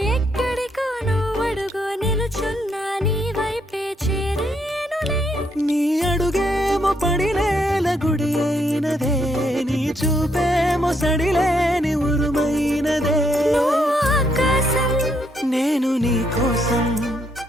ఎక్కడికో నువ్వడుగు నిలుచున్నా నీ వైపే చేరేనులే నీ అడుగేమో పడినేల గుడి అయినదే నీ చూపేమో సడిలేని ఉరుమైనదే నువ్వు ఆకాశం నేను నీ కోసం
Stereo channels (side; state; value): both; normal; correlation 0.74